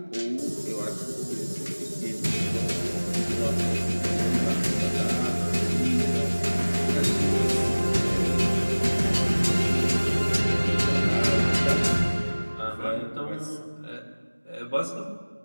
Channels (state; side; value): inverted; both; correlation -1.00